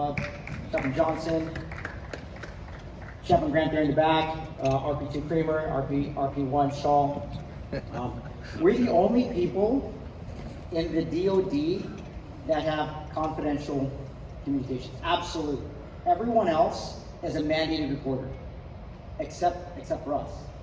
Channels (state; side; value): identical; both; correlation 1.00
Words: Chaplain Johnson, Chaplain Grant there in the back, RP2 Creamer, RP1 Shaw. We're the only people in the DoD that have confidential communications. Absolutely. Everyone else is a mandated reporter, except for us,